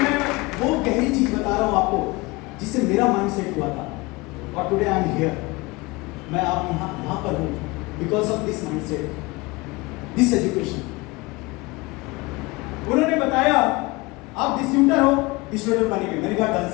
वो गहरी चीज बता रहा हूं आपको जिससे मेरा माइंड सेट हुआ था और टुडे आई एम हियर। मैं आप यहां पर हूं because of this mind set, this education. उन्होंने बताया आप डिस्ट्रीब्यूटर हो, डिस्ट्रीब्यूटर बनेंगे। मैंने कहा डन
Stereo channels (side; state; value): right; quieter; 23.7 dB